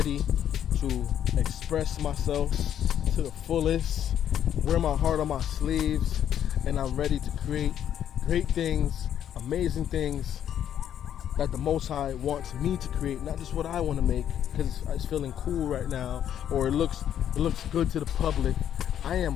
to express myself to the fullest, wear my heart on my sleeves, and I'm ready to create great things, amazing things, that the Most High wants me to create, not just what I want to make because it's feeling cool right now or it looks good to the public. I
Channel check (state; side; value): quieter; right; 10.0 dB